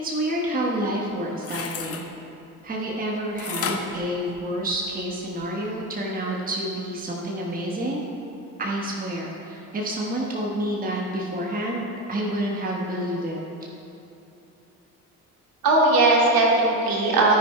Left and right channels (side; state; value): both; normal; correlation 0.16